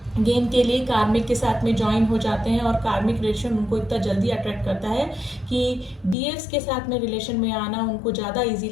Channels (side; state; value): right; drops out; at 6.2 s